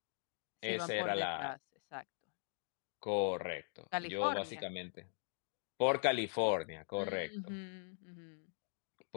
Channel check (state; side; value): silent; right; digital silence